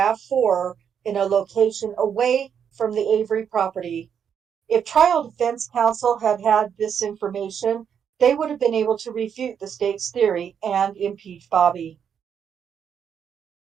in a location away from the Avery property. If trial defense counsel had had this information, they would have been able to refute the state's theory and impeach Bobby.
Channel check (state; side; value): quieter; left; 7.8 dB